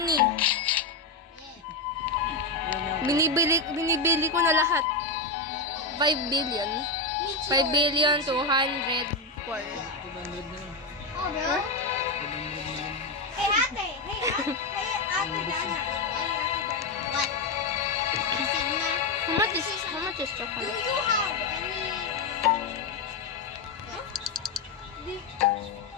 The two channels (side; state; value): right; quieter; 3.6 dB